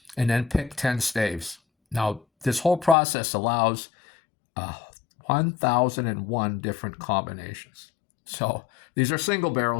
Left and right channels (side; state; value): right; drops out; at 3.0 s